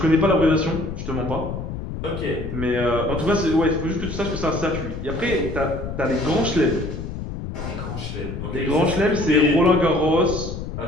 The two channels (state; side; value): noise; left; rumble, 7 dB below the sound